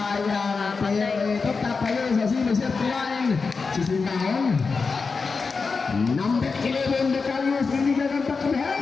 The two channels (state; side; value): quieter; right; 4.7 dB